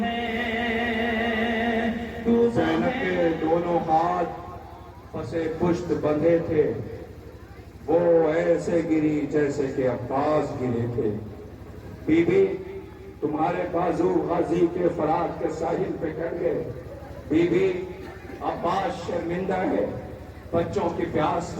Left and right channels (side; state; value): both; identical; correlation 1.00